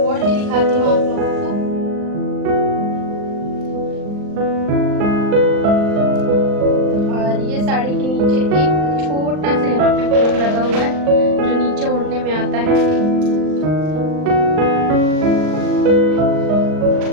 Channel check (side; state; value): left; late; 39 ms